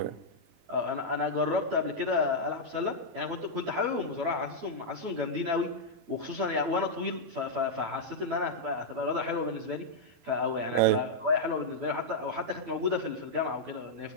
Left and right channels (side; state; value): left; late; 12 ms